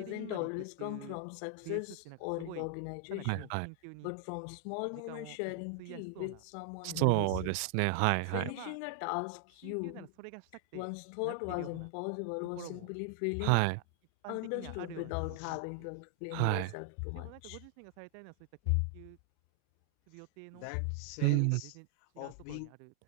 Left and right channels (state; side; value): different; both; correlation 0.00